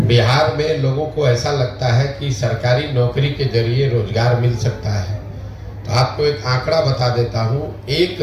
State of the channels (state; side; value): identical; both; correlation 1.00